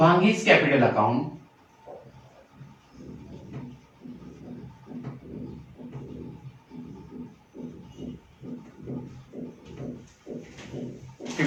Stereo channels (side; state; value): both; identical; correlation 1.00